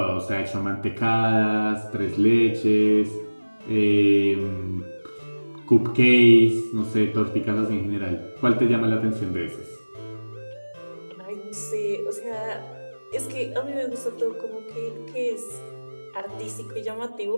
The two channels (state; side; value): inverted; both; correlation -1.00